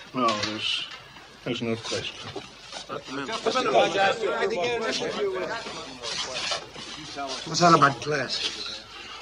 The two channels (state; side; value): identical; both; correlation 1.00